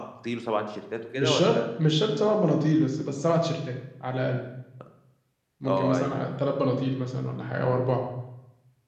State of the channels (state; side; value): identical; both; correlation 1.00